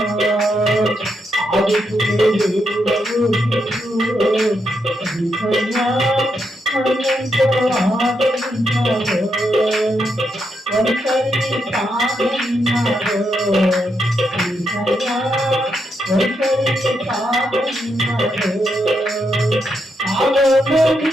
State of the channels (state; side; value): normal; both; correlation 0.81